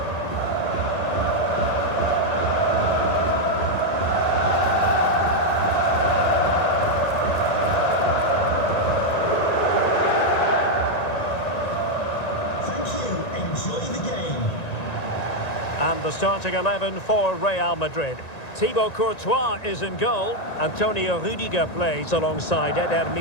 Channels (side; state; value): right; late; 1.9 ms